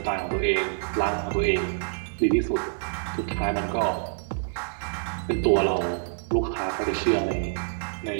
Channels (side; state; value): left; silent; digital silence